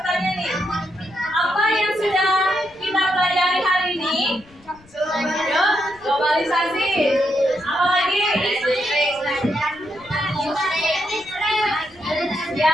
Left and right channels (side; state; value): left; noise; rumble, 27 dB below the sound